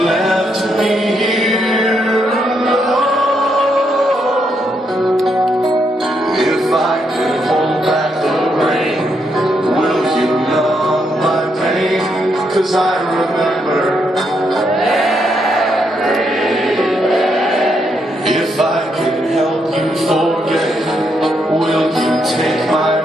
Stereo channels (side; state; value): both; normal; correlation 0.78